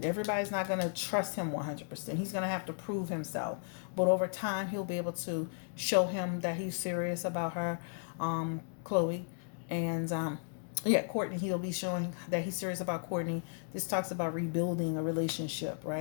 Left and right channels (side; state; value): right; silent; digital silence